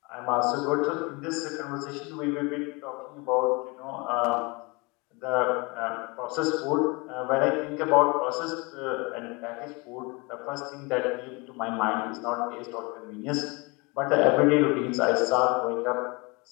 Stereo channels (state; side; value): quieter; right; 27.4 dB